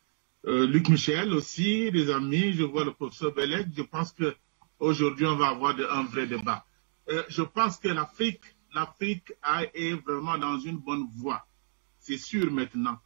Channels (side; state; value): left; silent; digital silence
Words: Luc Michel aussi, les amis. Je vois le professeur Belek. Je pense que aujourd'hui on va avoir un vrai débat. Je pense que l'Afrique est vraiment dans une bonne voie. C'est sûr maintenant.